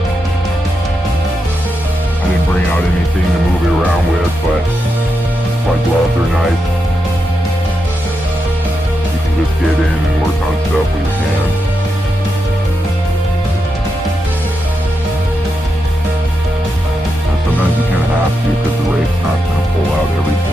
I didn't bring out anything to move it around with, but my gloves are nice. You can just get in and work on stuff with your hands. And sometimes you kind of have to because the rake's not going to pull out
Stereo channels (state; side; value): normal; both; correlation 0.86